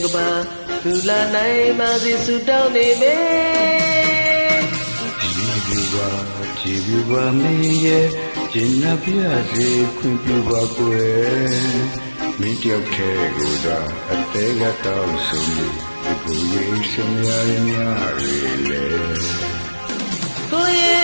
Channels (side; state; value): both; inverted; correlation -1.00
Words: ကပါလူလာနိုင်ပါစေဆုတောင်းနေမယ်ကြည်ပြူပါမင်းရဲ့ကျင်နာပြစေခွင့်ပြုပါကွယ်မင်းတယောက်တည်းကိုသာအသေးကတောင်းဆိုနေကိုရဲ့စမရများရလေကိုရဲ